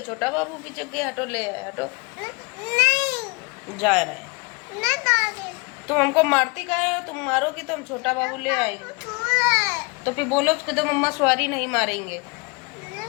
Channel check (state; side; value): quieter; right; 29.9 dB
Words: छोटा बाबू भी जग गया। हटो, ले आए, हटो। नहीं, जा रहे हैं। नहीं दादी। तुम हमको मारती काहे हो? तुम मारोगी तो हम छोटा बाबू ले आएंगे। सो रहा है। तो फिर बोलो उसको तो मम्मा सॉरी नहीं मारेंगे।